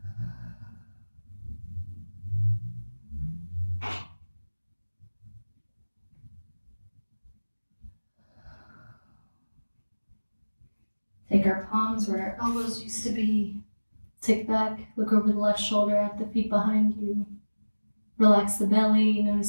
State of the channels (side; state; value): both; inverted; correlation -1.00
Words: Take our palms where our elbows used to be. Tick back, look over the left shoulder at the feet behind you. Relax the belly,